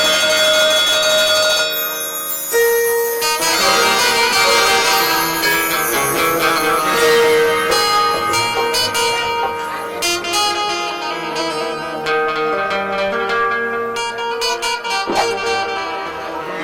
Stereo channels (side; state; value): both; identical; correlation 1.00